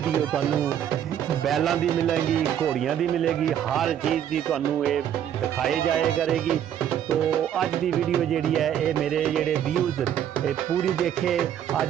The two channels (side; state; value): left; quieter; 10.0 dB